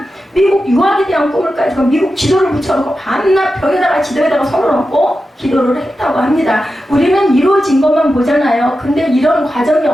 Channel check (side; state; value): both; normal; correlation 0.91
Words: 미국 유학에 대한 꿈을 가지고 미국 지도를 붙여놓고 밤낮 벽에다가 지도에다가 손을 얹고 기도를 했다고 합니다. 우리는 이루어진 것만 보잖아요. 근데 이런 과정이